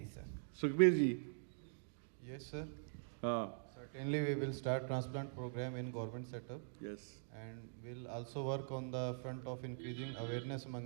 sir. Sukhbir ji. Yes, sir. Certainly, we will start transplant program in government setup. Yes. And we'll also work on the front of increasing awareness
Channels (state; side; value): silent; left; digital silence